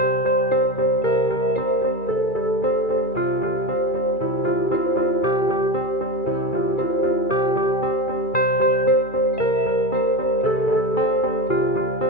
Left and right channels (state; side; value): late; right; 2.3 ms